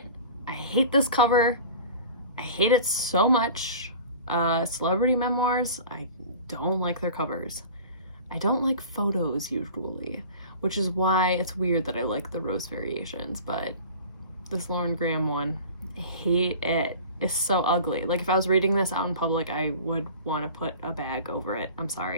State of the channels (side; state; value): both; inverted; correlation -0.40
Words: I hate this cover. I hate it so much. Celebrity Memoirs, I don't like their covers. I don't like photos usually, which is why it's weird that I like the Rose Variations, but this Lauren Graham one, I hate it. It's so ugly. Like if I was reading this out in public, I would want to put a bag over it. I'm